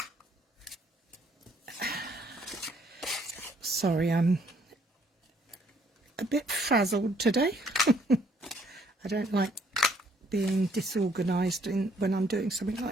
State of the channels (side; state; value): both; normal; correlation 0.66